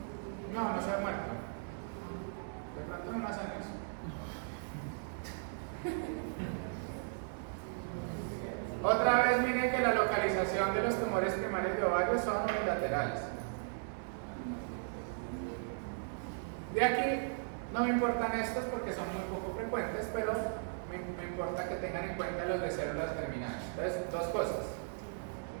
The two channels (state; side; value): silent; left; 53 dB below the other